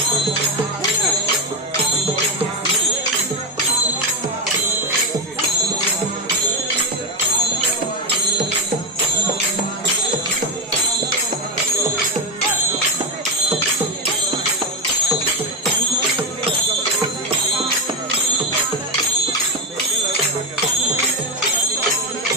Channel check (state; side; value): normal; both; correlation 0.11